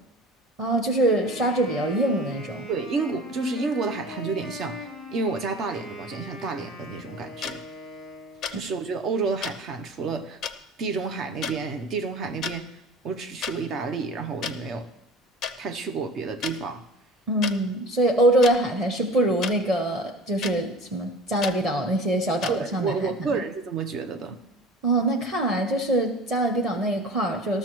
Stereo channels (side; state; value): both; normal; correlation 0.40